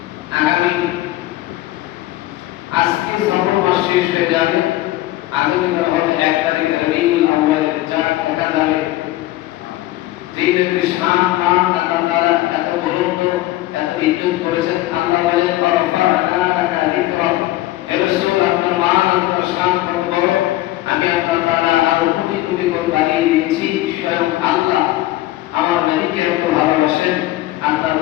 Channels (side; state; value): right; quieter; 16.3 dB